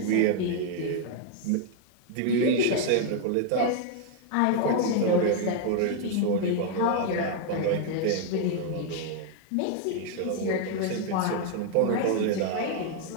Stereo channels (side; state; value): both; different; correlation 0.00